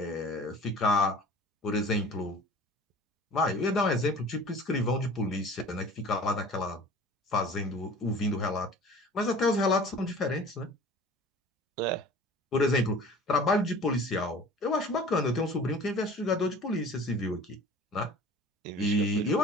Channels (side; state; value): both; normal; correlation 0.44